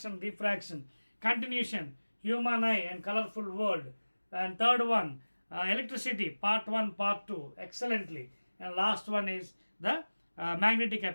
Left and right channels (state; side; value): inverted; both; correlation -1.00